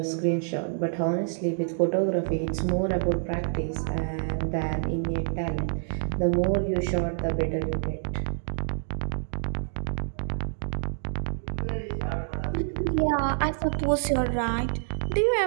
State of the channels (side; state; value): left; silent; digital silence